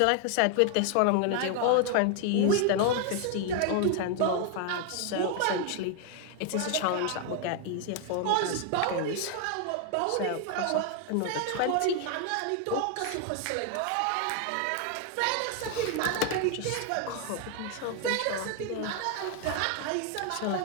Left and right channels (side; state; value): both; different; correlation 0.00